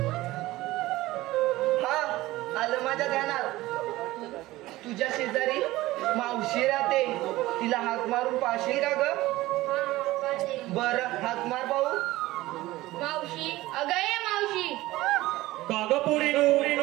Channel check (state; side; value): quieter; left; 17.8 dB